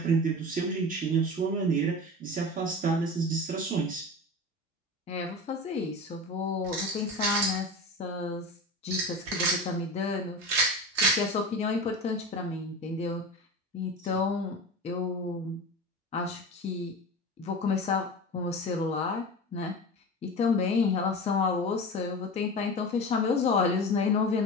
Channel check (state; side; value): normal; both; correlation 0.29